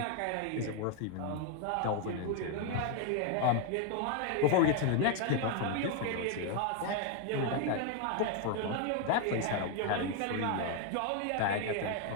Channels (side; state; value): both; different; correlation 0.01